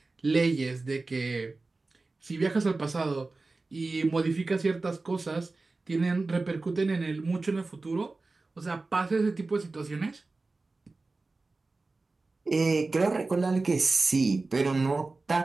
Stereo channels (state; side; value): quieter; left; 3.5 dB